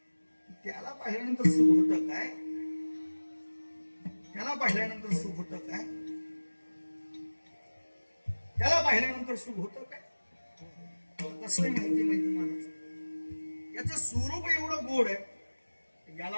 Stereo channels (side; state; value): both; inverted; correlation -1.00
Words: त्याला पाहिल्यानंतर सुख होतं काय, त्याला पाहिल्यानंतर सुख होतं काय, त्याला पाहिल्यानंतर सुख होतं काय. कसं माहिती महाराज, याचं स्वरूप एवढं गोड आहे,